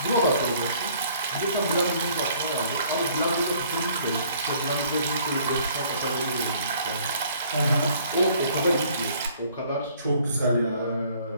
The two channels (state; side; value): inverted; both; correlation -0.59